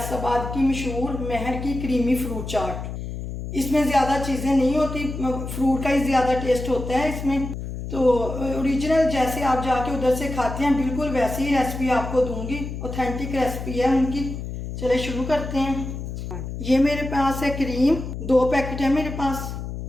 की मशहूर महर की क्रीमी फ्रूट चाट। इसमें ज़्यादा चीज़ें नहीं होती, फ्रूट का ही ज़्यादा टेस्ट होता है इसमें। तो ओरिजिनल जैसे आप जाके उधर से खाते हैं बिल्कुल वैसी ही रेसिपी आपको दूंगी। ऑथेंटिक रेसिपी है उनकी। चले शुरू करते हैं। ये मेरे पास है क्रीम, 2 पैकेट है मेरे पास।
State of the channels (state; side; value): noise; left; hum, 7 dB below the sound